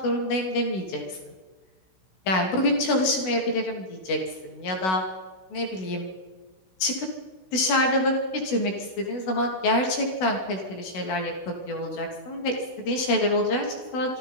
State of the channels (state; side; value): late; right; 16 ms